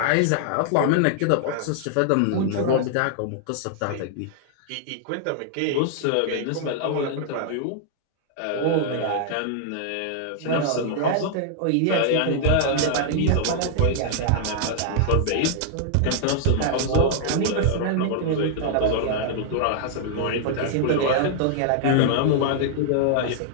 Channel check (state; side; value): different; both; correlation -0.01